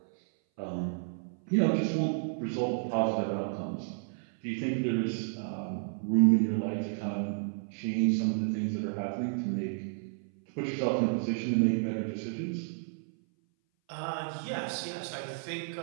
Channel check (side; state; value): left; silent; 57 dB below the other